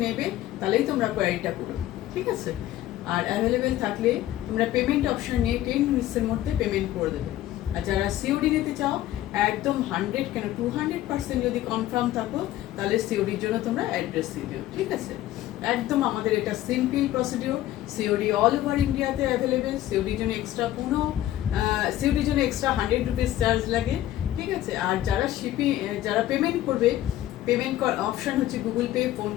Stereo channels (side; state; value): right; quieter; 13.9 dB